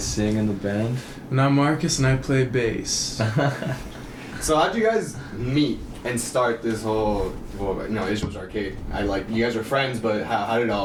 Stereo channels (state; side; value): identical; both; correlation 1.00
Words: in the band. And I'm Marcus and I play bass. So how'd you guys meet and start this whole, Israelsarcade? You guys were friends, but how did it